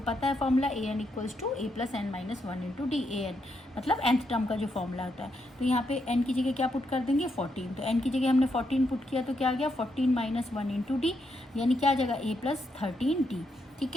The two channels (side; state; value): both; normal; correlation 0.80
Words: है formula AN equals to A plus N minus 1 into D. AN मतलब nth टर्म का जो फॉर्मूला होता है। तो यहाँ पे n की जगह क्या पुट कर देंगे, 14। तो n की जगह हमने 14 पुट किया तो क्या आ गया, 14 माइनस 1 इंटू डी, यानी क्या जगह A प्लस 13D। ठीक